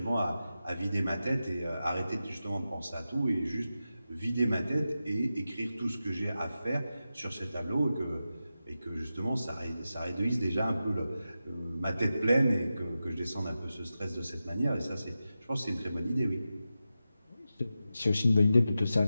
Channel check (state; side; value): inverted; both; correlation -0.92